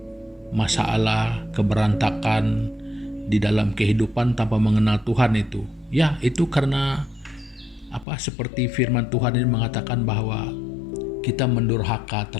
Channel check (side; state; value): right; drops out; at 8.1 s